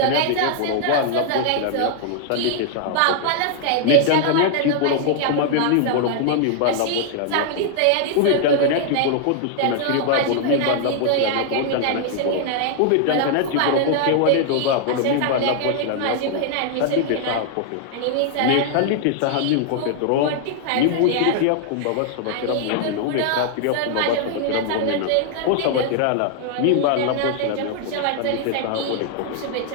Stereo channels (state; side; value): different; both; correlation -0.01